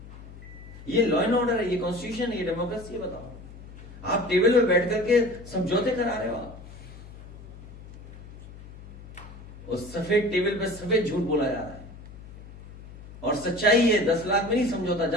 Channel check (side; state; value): left; noise; hum, 17 dB below the sound